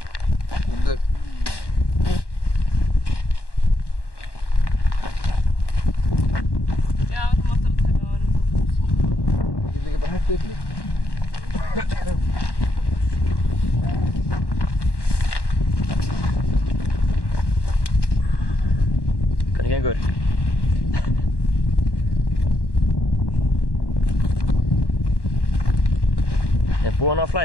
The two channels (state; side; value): late; right; 1.1 ms